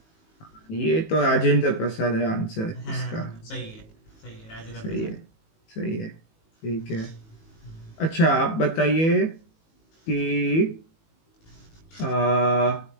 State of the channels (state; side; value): late; right; 18 ms